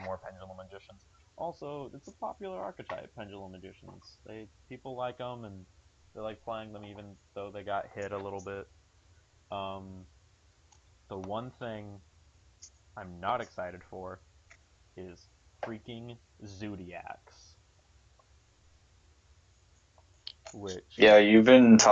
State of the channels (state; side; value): identical; both; correlation 1.00